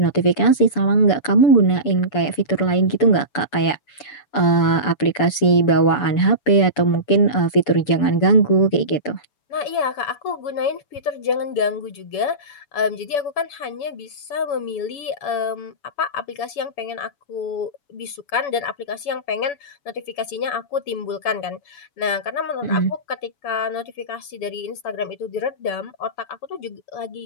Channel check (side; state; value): right; late; 7.0 ms